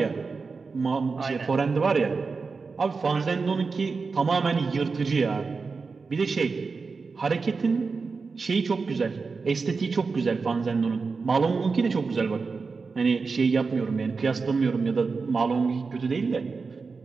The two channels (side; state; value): left; quieter; 4.6 dB